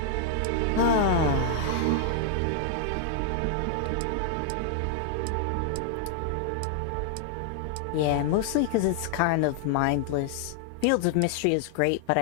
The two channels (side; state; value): both; different; correlation 0.00